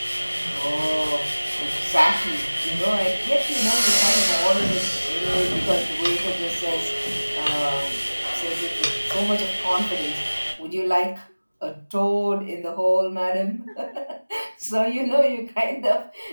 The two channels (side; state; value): both; inverted; correlation -1.00